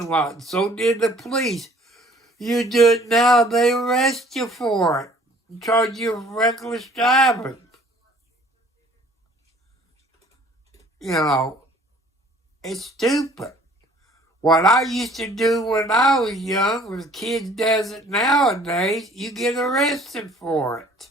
lot. So did the police. You do it now, they arrest you for it and charge you with reckless driving. You know, it's stupid. What I used to do when I was young, when kids does it nowadays, you get arrested for it.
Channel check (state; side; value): normal; both; correlation 0.54